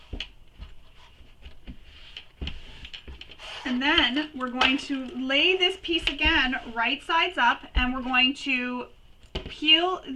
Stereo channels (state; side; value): identical; both; correlation 1.00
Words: And then we're going to lay this piece again right sides up, and we're going to peel